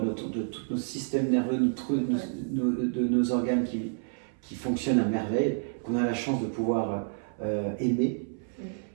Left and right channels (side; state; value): left; silent; 58 dB below the other